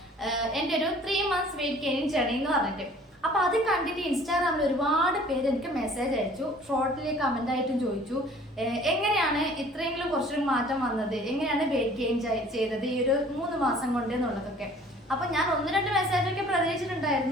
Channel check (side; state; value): both; normal; correlation 0.51